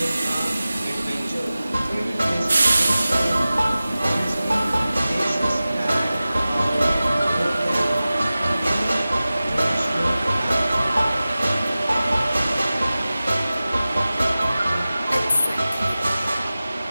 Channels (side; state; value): both; inverted; correlation -0.96